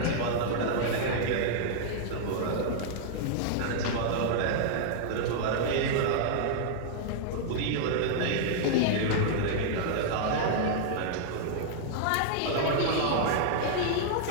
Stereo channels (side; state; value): both; different; correlation -0.01